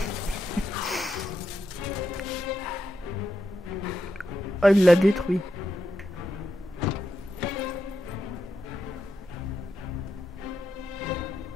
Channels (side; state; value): both; normal; correlation 0.85